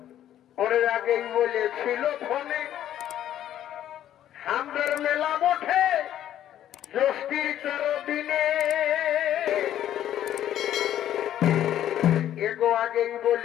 ওরে আগেই বলেছিল ফোনে হামদের মেলা বটে জ্যৈষ্ঠীর 13 দিনে এগো আগেই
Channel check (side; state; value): right; quieter; 11.5 dB